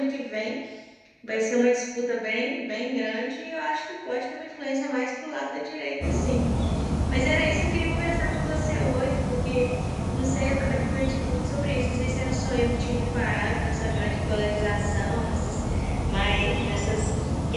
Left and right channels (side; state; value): both; identical; correlation 1.00